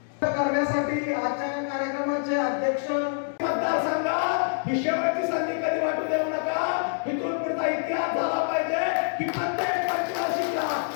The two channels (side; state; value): right; silent; digital silence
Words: करण्यासाठी आजच्या कार्यक्रमाचे अध्यक्ष मतदारसंघात ही शेवटची संधी कधी वाटू देऊ नका. इथून पुढचा इतिहास झाला पाहिजे की प्रत्येक पंचवार्षिकला